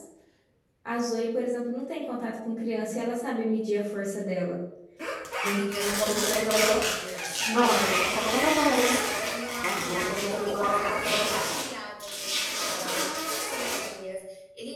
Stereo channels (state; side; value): identical; both; correlation 1.00